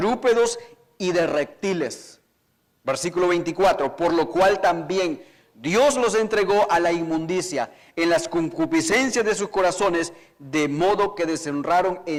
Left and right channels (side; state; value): both; identical; correlation 1.00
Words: y de reptiles. Versículo 24, por lo cual también Dios los entregó a la inmundicia en las concupiscencias de sus corazones, de modo que deshonraron